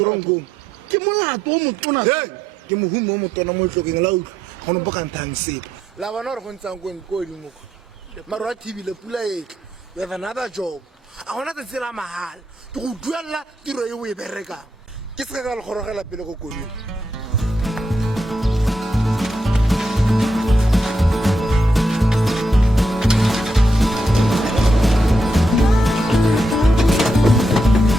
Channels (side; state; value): both; normal; correlation 0.80